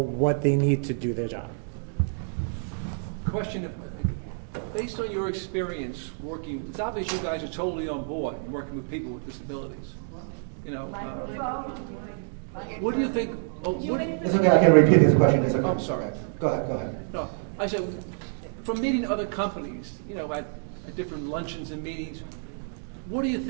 they need to do their job. Question: based on your experience working, it's obvious you guys are totally on board working with people with disabilities. What do you think? It's okay, I can repeat this question. It's okay. I'm sorry. Go ahead. No, I said, from meeting other companies, at different luncheons and meetings, what do you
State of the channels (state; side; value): silent; left; digital silence